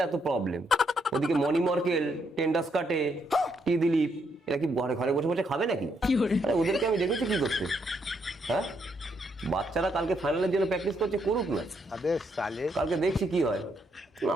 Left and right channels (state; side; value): normal; both; correlation 0.75